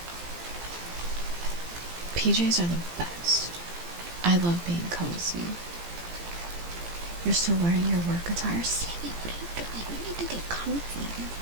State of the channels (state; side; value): late; left; 17 ms